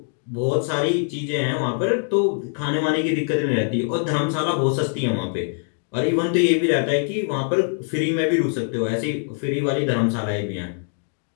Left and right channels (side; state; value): right; silent; digital silence